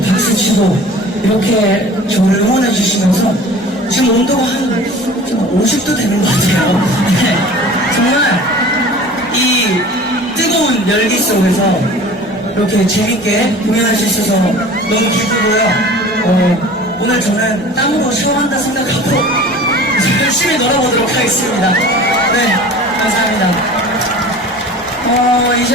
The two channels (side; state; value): both; normal; correlation 0.42